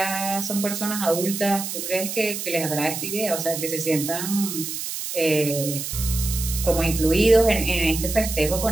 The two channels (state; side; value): noise; right; hiss, 5 dB below the sound